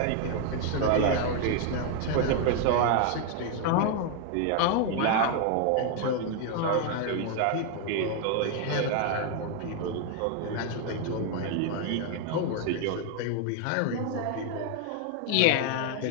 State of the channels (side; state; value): both; different; correlation 0.01